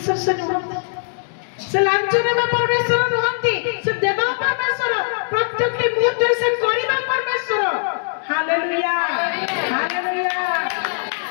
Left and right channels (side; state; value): right; silent; digital silence